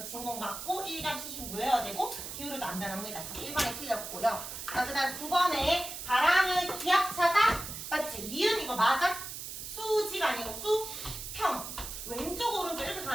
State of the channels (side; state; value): right; noise; hiss, 8 dB below the sound